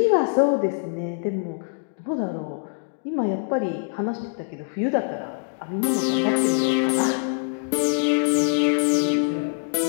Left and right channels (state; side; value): silent; right; digital silence